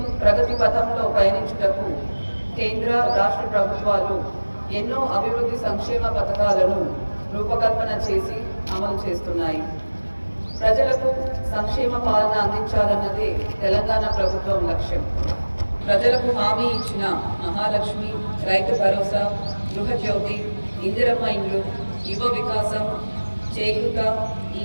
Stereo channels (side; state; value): both; inverted; correlation -1.00